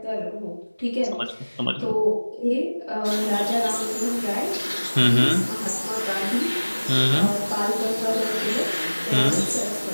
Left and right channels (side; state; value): both; inverted; correlation -1.00